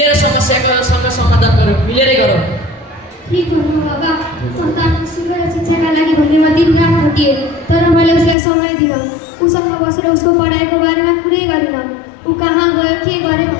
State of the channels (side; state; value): right; drops out; at 8.3 s